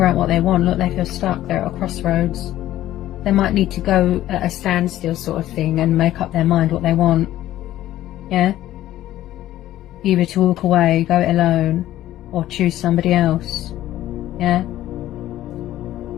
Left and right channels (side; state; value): right; quieter; 13.8 dB